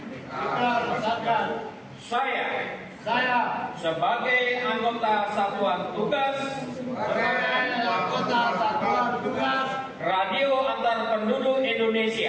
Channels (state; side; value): identical; both; correlation 1.00